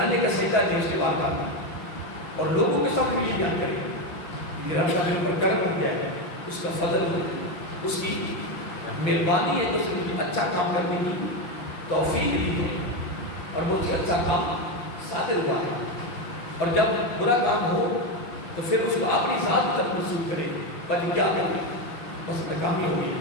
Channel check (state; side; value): late; right; 6.1 ms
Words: کا سجدہ دیں اس کی بارگاہ میں، اور لوگوں کے سامنے یہ بیان کریں کہ یہ رب کا میرے پر کرم ہو گیا ہے، اس کا فضل ہو، اس کی مہربانی ہے کہ اس نے مجھے اچھا کام کرنے کی توفیق دی ہے اور مجھے اچھا کام صادر ہوا ہے. اور جب برا کام ہو تو پھر اس کو اپنی ذات کی طرف منسوخ کرے، بلکہ کیا کرے بس ناکامی ہو گئی،